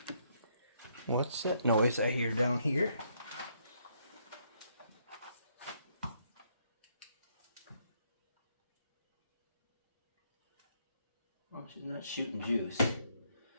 What's that noise I hear down here? Well, she's not shooting juice.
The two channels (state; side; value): inverted; both; correlation -0.72